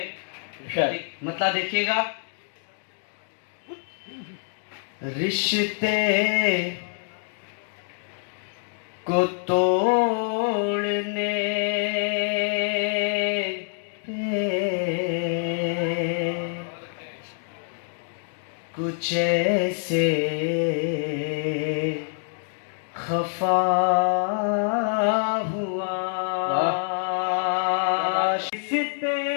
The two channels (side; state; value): right; silent; digital silence